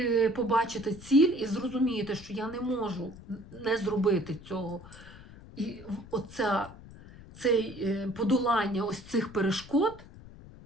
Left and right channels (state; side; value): noise; left; rumble, 18 dB below the sound